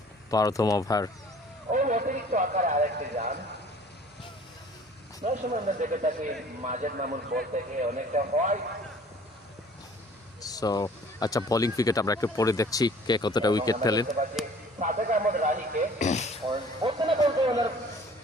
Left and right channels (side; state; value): both; normal; correlation 0.51